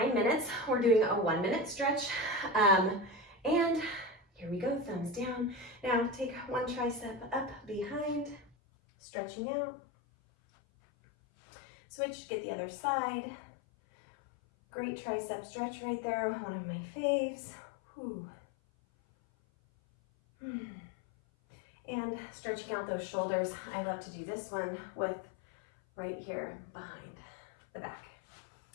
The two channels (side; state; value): right; drops out; at 8.5 s